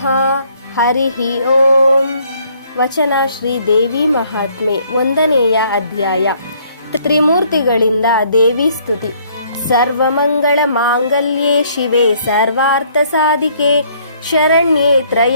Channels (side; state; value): both; inverted; correlation -0.64